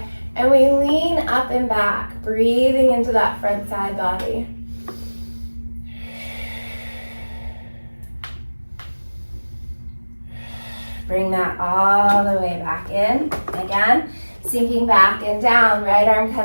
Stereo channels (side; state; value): both; inverted; correlation -1.00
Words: and we lean up and back, breathing into that front side body. Bring that all the way back in. Again, sinking back and down. Right arm